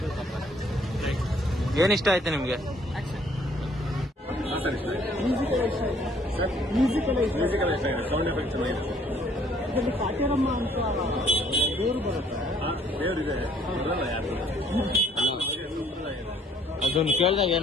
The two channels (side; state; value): both; normal; correlation 0.62